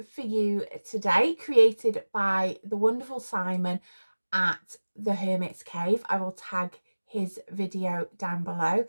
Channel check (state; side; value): inverted; both; correlation -1.00